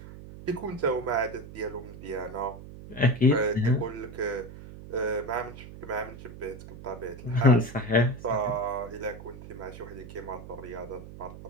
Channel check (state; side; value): noise; right; hum, 14 dB below the sound